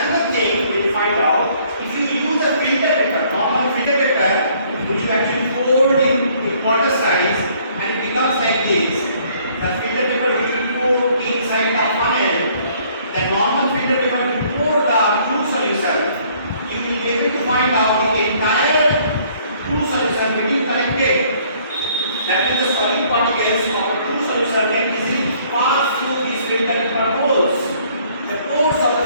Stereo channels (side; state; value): both; inverted; correlation -0.61